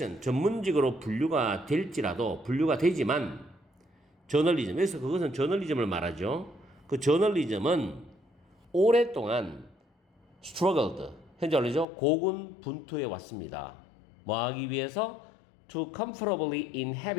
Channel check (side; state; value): right; drops out; at 11.9 s